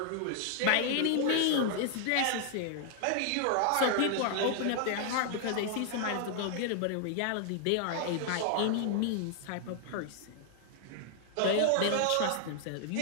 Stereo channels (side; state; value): both; different; correlation 0.00